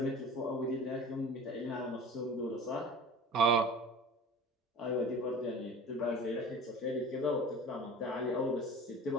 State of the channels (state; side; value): normal; both; correlation 0.40